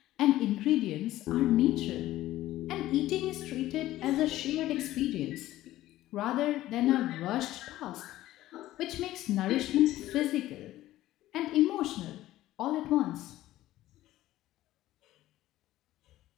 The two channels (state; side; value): quieter; right; 15.1 dB